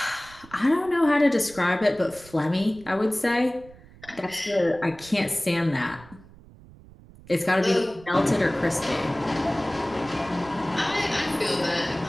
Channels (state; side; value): noise; right; rumble, 22 dB below the sound